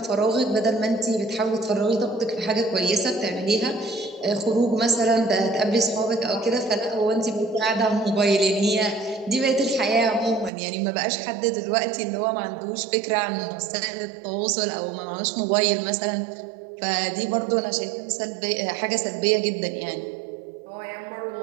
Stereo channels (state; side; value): drops out; left; at 10.5 s